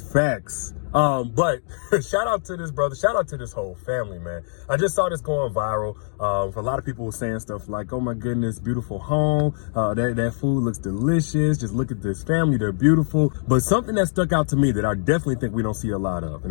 But shout out to this brother. Shout out to this whole family, man. I just saw this going viral. For a lot of people were saying stuff like, oh my goodness, beautiful home. That food looks delicious. Just look at this family. They're beautiful. But something that stuck out to me that I definitely think we don't see a lot of, and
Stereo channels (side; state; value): right; silent; digital silence